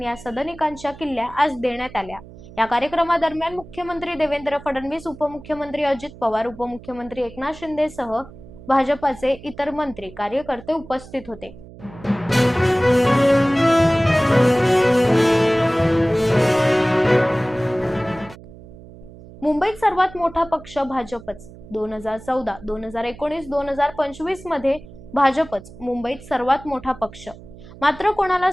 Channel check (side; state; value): right; noise; hum, 18 dB below the sound